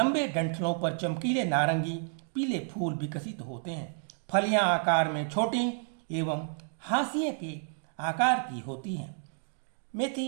डंठलों पर चमकीले नारंगी पीले फूल विकसित होते हैं। फलियां आकार में छोटी एवं हाशिए के आकार की होती हैं।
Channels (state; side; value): silent; left; 57 dB below the other